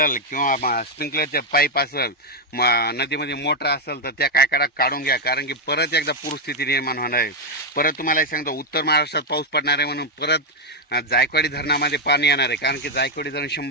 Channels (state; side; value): normal; both; correlation 0.00